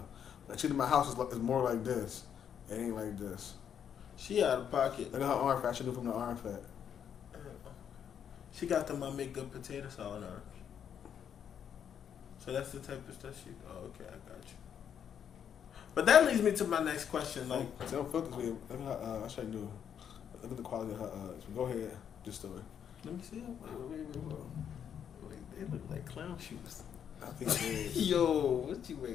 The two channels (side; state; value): right; quieter; 8.4 dB